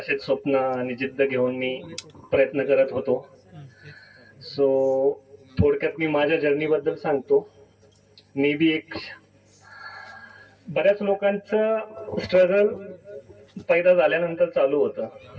स्वप्न आणि जिद्द घेऊन मी प्रयत्न करत होतो. सो थोडक्यात मी माझ्या जर्नीबद्दल सांगतो. मी बी एक बऱ्याच लोकांचं स्ट्रगल पैदा झाल्यानंतर चालू होतं.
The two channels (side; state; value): both; identical; correlation 1.00